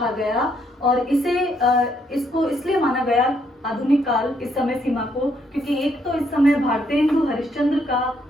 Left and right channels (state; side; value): normal; both; correlation 0.72